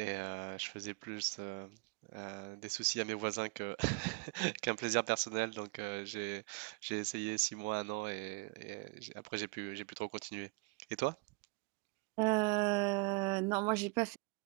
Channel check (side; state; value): left; quieter; 31.5 dB